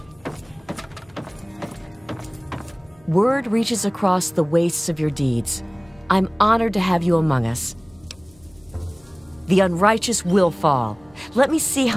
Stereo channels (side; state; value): left; noise; hum, 30 dB below the sound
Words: Word reaches across the wastes of your deeds. I'm honored to have you among us. The unrighteous will fall. Let me see